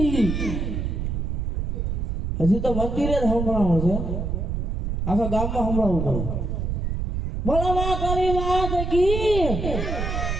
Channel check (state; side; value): noise; right; rumble, 1 dB below the sound